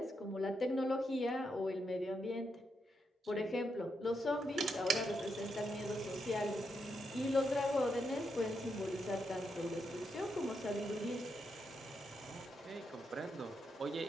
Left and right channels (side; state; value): both; normal; correlation 0.82